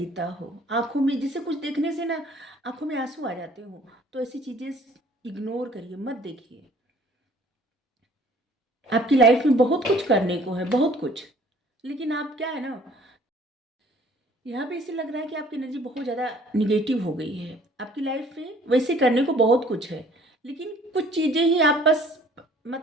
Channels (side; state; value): both; normal; correlation 0.55